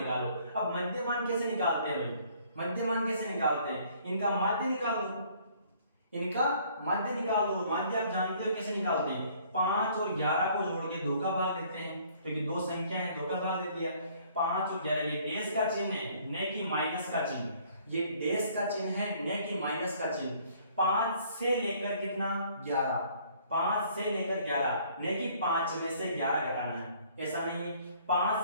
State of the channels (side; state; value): both; inverted; correlation -0.60